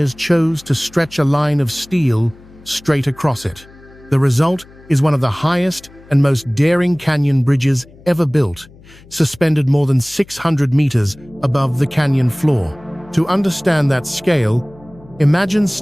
chose to stretch a line of steel straight across it. The result is one of the highest and most daring canyon bridges ever built, suspended more than 600 meters above the canyon floor. To understand that scale, imagine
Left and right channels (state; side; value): noise; left; hum, 24 dB below the sound